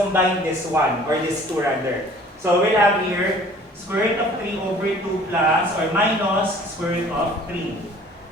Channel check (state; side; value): normal; both; correlation 0.51